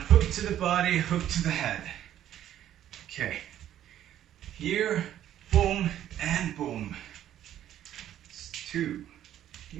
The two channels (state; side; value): quieter; left; 11.5 dB